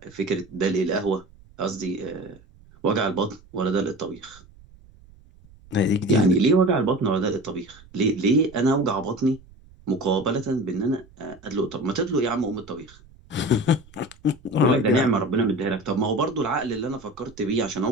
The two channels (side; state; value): right; noise; rumble, 25 dB below the sound